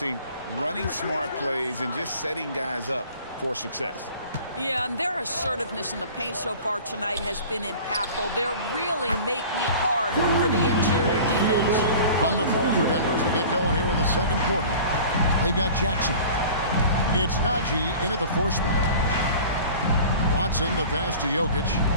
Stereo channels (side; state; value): both; inverted; correlation -0.42